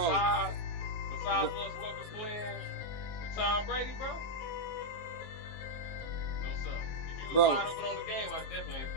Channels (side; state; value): right; late; 19 ms